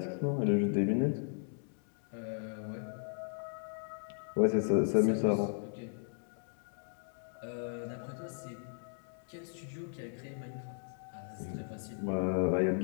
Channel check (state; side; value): silent; right; digital silence